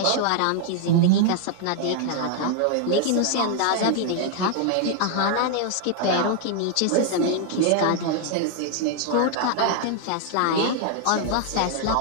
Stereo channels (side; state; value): both; different; correlation 0.00